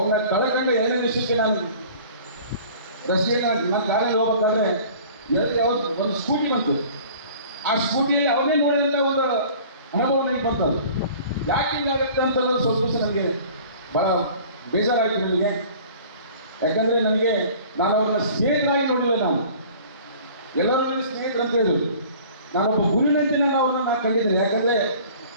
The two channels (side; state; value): both; inverted; correlation -0.47